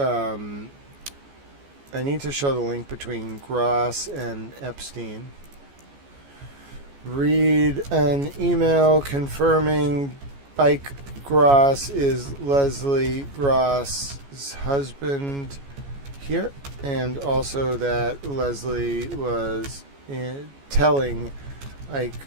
I need to show the link between Gross and Epstein. Read an email confirming Ike Gross is Leslie Gross's husband here, and also that Leslie was telling Ike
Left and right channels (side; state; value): left; late; 14 ms